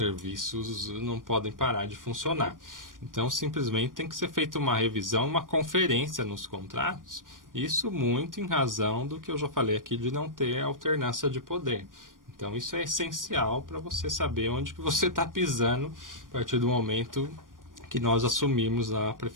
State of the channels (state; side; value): late; left; 0.90 ms